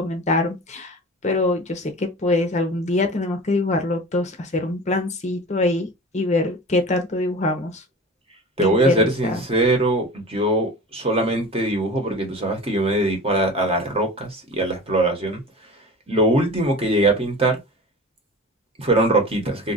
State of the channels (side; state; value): both; normal; correlation 0.35